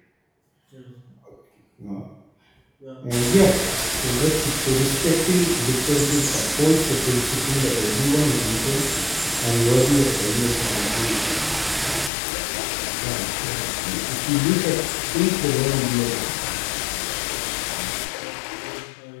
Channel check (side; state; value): right; drops out; at 12.1 s